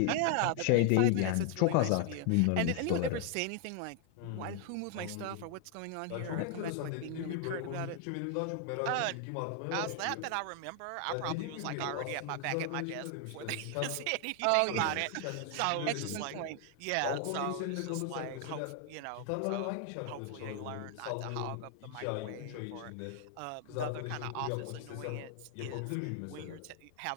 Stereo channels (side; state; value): both; different; correlation 0.00